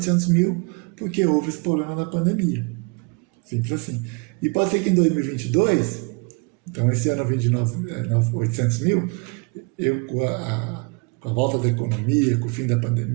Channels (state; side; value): quieter; left; 31.4 dB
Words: mil, porque houve esse problema da pandemia. Simples assim. E pode ser que em 2022, então esse ano eu vendi 800 mil, com a volta da economia, com o fim da